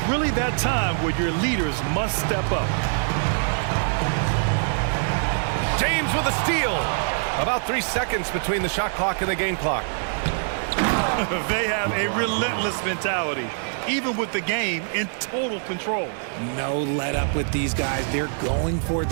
really that time where your leaders must step up. James with a steal. About 3 seconds between the shot clock and the game clock. They have a relentless mentality, even with the game in total control. No let up with these guys. They're going for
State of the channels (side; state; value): left; silent; digital silence